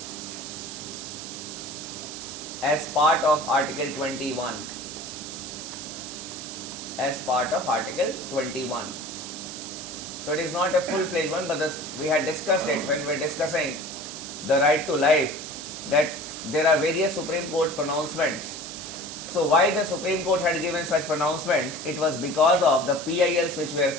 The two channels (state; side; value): noise; right; hiss, 9 dB below the sound